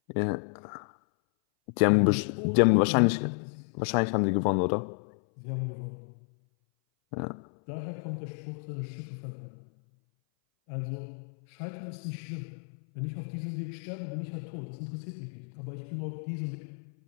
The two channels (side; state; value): right; silent; 57 dB below the other